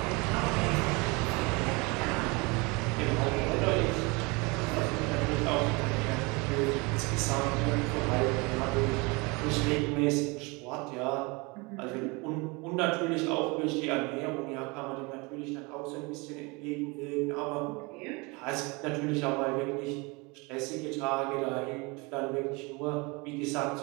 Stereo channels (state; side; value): quieter; left; 27.2 dB